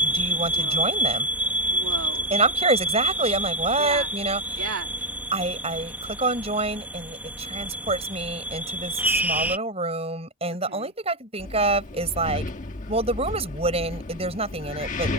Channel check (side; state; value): both; normal; correlation 0.04